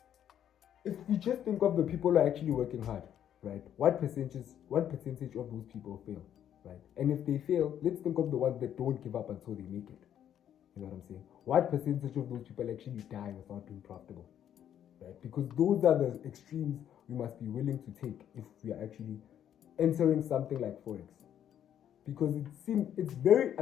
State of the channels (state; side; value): quieter; right; 10.0 dB